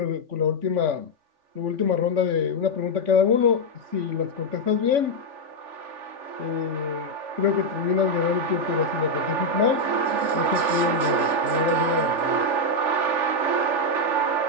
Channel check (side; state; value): left; late; 3.5 ms